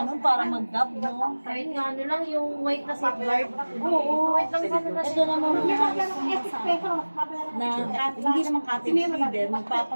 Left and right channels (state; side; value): inverted; both; correlation -1.00